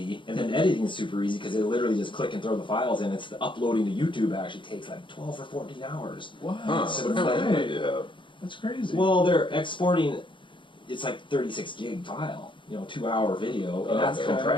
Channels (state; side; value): late; right; 0.24 ms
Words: and then editing is super easy because they literally just click and throw the files in. It's the uploading to YouTube actually takes like 12 or 14 hours. Wow. Huh, So what kind of idea? That's crazy. Well, they're exporting. It's like 36 gig file, 2-hour video, and that's Okay.